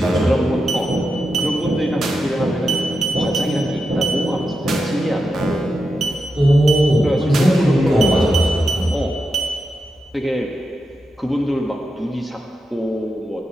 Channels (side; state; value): both; normal; correlation 0.88